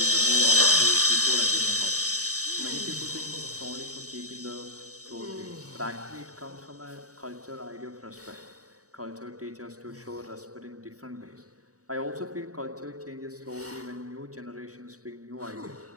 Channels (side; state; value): left; late; 0.66 ms